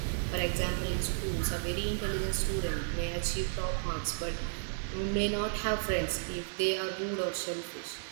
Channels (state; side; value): silent; left; digital silence